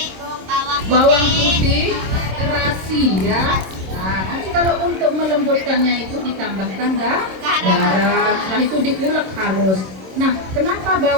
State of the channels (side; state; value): left; late; 26 ms